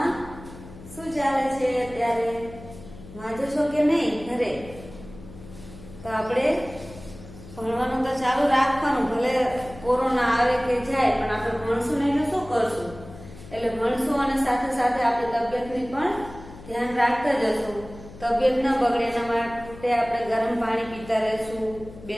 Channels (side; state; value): left; noise; hum, 17 dB below the sound